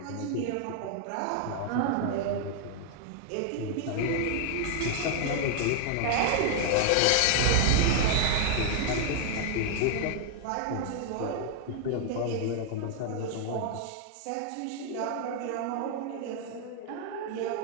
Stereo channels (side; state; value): both; different; correlation 0.00